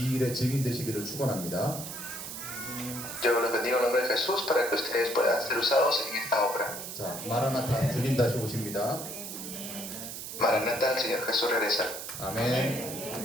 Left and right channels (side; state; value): right; noise; hiss, 8 dB below the sound